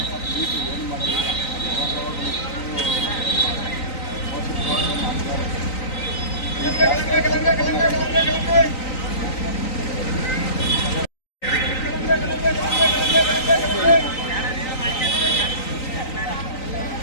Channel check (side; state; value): right; late; 3.9 ms